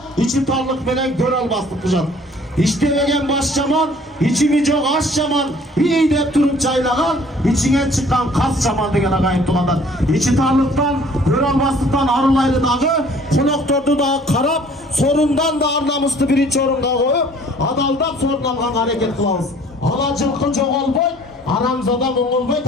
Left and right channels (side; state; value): both; normal; correlation 0.54